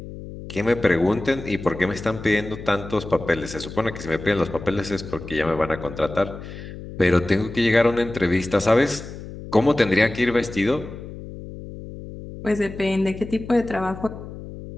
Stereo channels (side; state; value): left; noise; hum, 12 dB below the sound